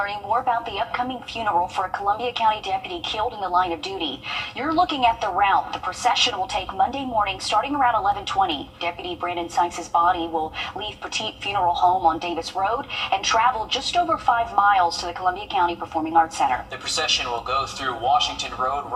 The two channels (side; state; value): both; identical; correlation 1.00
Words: more about the upcoming funeral for a Columbia County deputy killed in the line of duty. You're looking at the route. The procession will take Monday morning starting around 11:20. Deputy Brandon Sykes' body will leave Petite Funeral Home on Davis Road and travel just over 5 miles to the Columbia County Performing Arts Center. The procession will go through Washington Road,